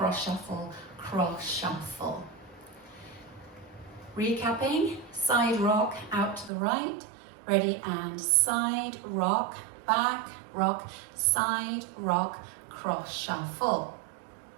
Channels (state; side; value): drops out; left; at 6.5 s